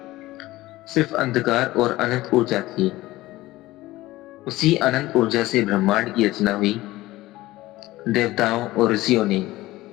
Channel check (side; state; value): right; quieter; 17.7 dB